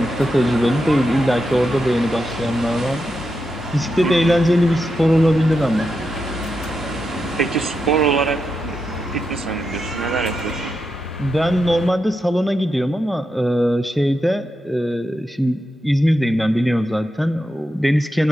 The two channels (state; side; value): normal; both; correlation 0.86